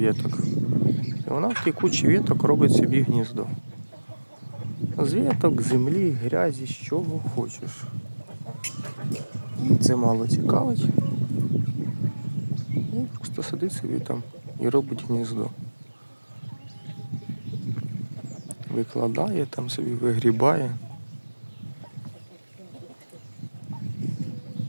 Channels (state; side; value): inverted; both; correlation -1.00